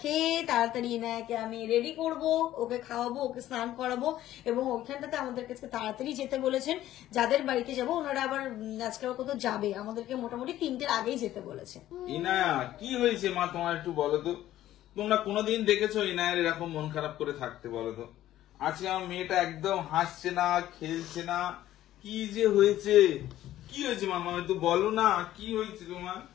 খেয়ে তাড়াতাড়ি ইনায়াকে আমি রেডি করব, ওকে খাওয়াবো, ওকে স্নান করাবো এবং ওইখানটাতে আমাদের কাছে তাড়াতাড়ি যেতে বলেছেন। যাদের বাড়িতে যাবো ওনারা আবার আজকে কোথাও যাবে, আমাদেরকে মোটামুটি 3টের আগেই যেতে বলেছে। ইনায়া কি হয়েছে মা, তোমার একটু বলো তো। তোমরা কোনোদিন দেখেছো ইনায়ার এরকম মন খারাপ করে থাকতে? বলো তো। আজকে আমার মেয়েটা একদম হাসছে না, খেলছে না, কি যে হয়েছে? কি হয়েছে মামা, একটু বলো না, কি হয়েছে তোমার?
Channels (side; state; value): right; quieter; 13.6 dB